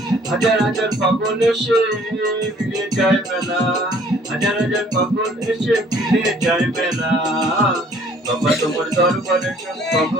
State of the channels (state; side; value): normal; both; correlation 0.58